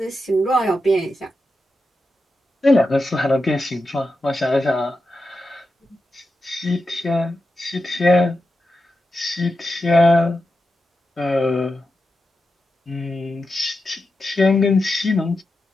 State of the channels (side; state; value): both; normal; correlation 0.89